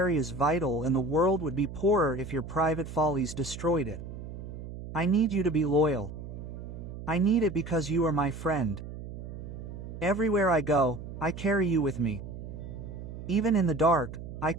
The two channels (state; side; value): noise; right; hum, 10 dB below the sound